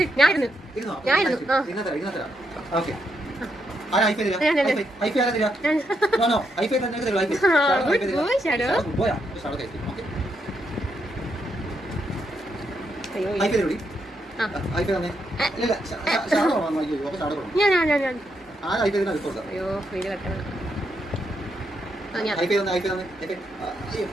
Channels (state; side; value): normal; both; correlation 0.80